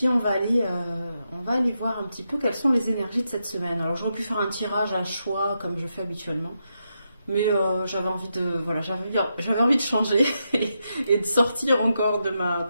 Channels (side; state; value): both; inverted; correlation -0.84